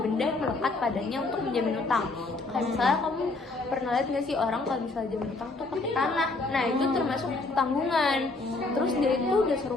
yang melekat padanya untuk menjamin utang. Kayak misalnya kamu pernah lihat nggak sih orang kalau misalnya jamin utang tuh pakai tanah. Nah, itu termasuk tanggungan. Terus dia itu dasar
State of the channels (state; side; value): quieter; right; 3.4 dB